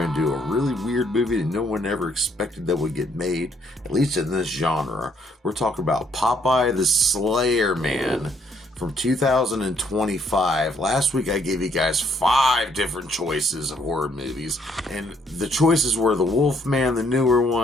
to do a really weird movie that no one ever expected that would get made, at least in this genre. We're talking about Popeye The Slayer Man from 2025. Last week I gave you guys 5 different choices of horror movies, and the choices were The Wolfman, the newer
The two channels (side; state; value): both; normal; correlation 0.68